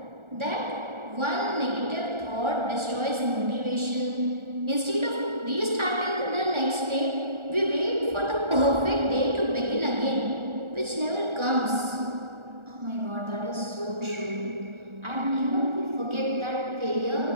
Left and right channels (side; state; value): left; late; 1.4 ms